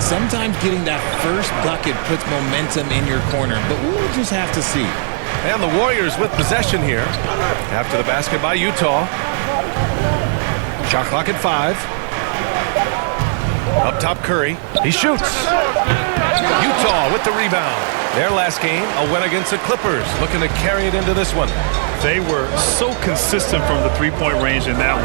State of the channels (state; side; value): silent; left; 56 dB below the other